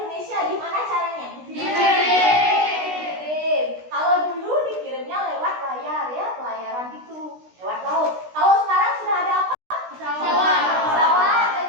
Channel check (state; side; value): late; left; 16 ms